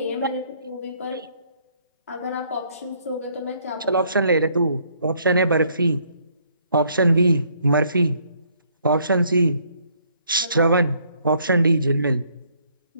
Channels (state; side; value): inverted; both; correlation -0.66